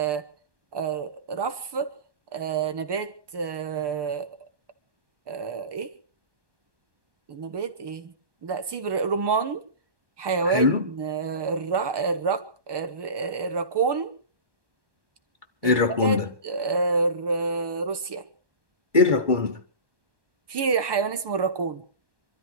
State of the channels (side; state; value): left; late; 1.2 ms